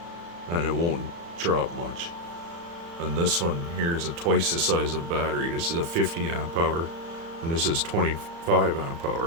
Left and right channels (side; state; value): left; late; 35 ms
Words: and it won't drop much. And this one here is twice the size of battery. This is a 50 amp hour and this is 25 amp